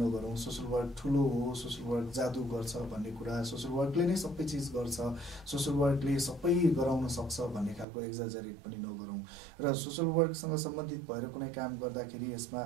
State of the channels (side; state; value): left; drops out; at 7.9 s